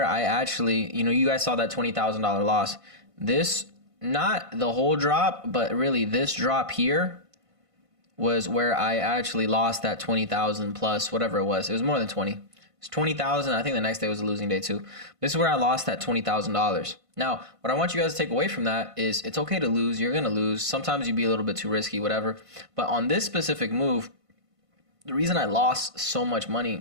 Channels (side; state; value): left; late; 1.5 ms